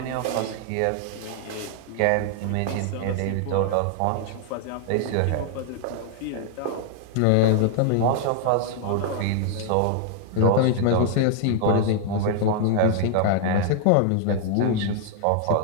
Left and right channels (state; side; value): different; both; correlation 0.00